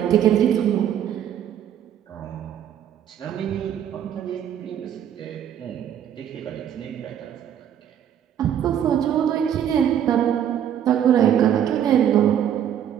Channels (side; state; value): left; quieter; 9.7 dB